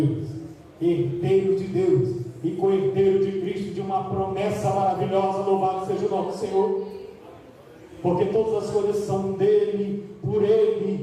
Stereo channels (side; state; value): both; identical; correlation 1.00